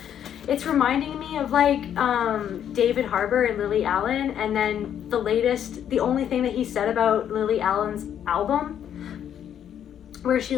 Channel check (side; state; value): right; quieter; 9.6 dB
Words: It's reminding me of like David Harbour and Lily Allen, and then the only thing that he said about Lily Allen's album, where